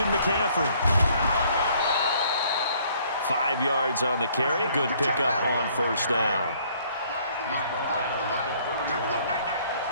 McCaffrey. 5 yards on the carry. Good pickup on 1st down. He's brought down at the 31.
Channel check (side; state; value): both; inverted; correlation -0.62